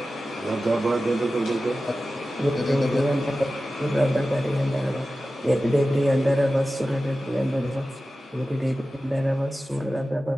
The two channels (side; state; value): both; normal; correlation 0.94